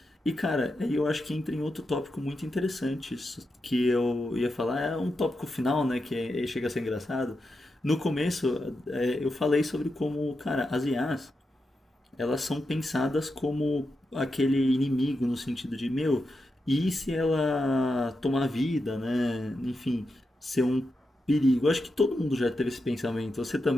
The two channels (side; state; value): both; normal; correlation 0.87